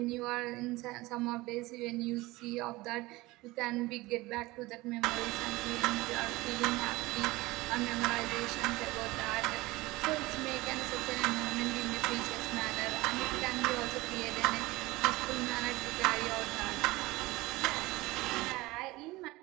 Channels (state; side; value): quieter; left; 20.5 dB